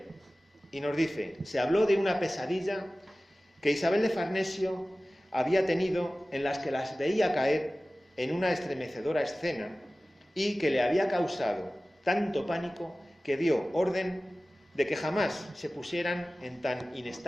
y nos dice: se habló de una pesadilla que Isabel de Farnesio había tenido, en las que las veía caer en una estremecedora escena y que le había causado tanto pánico que dio orden de que jamás se pusieran en tan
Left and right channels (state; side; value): normal; both; correlation 0.97